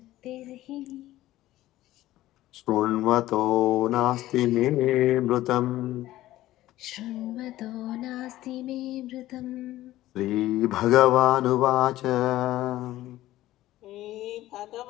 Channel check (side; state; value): right; quieter; 15.4 dB